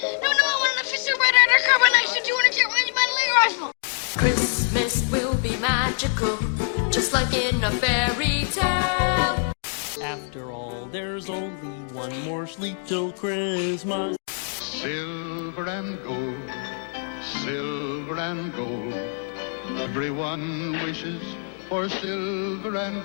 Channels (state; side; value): silent; right; 62 dB below the other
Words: No, I want an officer red undercover knife to 200 jet range metal rifle. Christmas will be magical, just like in a fairy tale. After all, there's only one more sleep till Christmas. Silver and gold, silver and gold. Everyone wishes for silver and